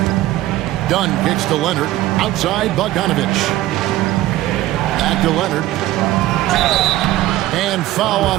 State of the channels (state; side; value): quieter; left; 15.5 dB